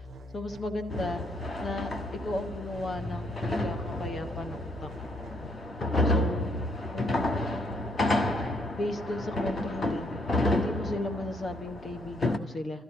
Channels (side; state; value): both; normal; correlation 0.70